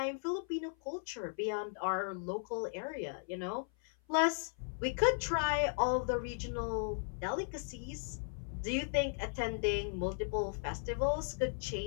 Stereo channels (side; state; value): right; silent; 53 dB below the other